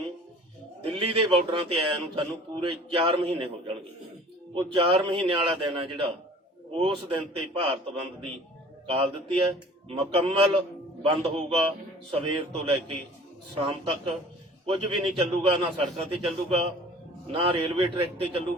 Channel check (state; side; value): normal; both; correlation 0.47